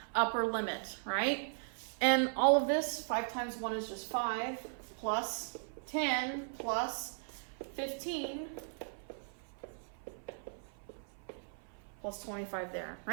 upper limit, right? And all of this, 5 times 1 is just 5, plus 10, plus 15, plus 25 there,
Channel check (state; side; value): silent; left; 53 dB below the other